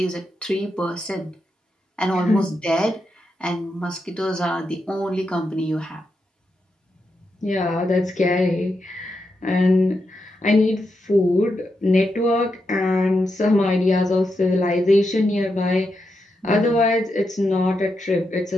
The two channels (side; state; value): both; normal; correlation 0.85